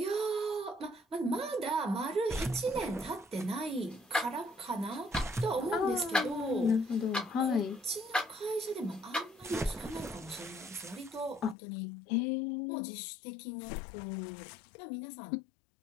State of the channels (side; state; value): right; drops out; at 11.6 s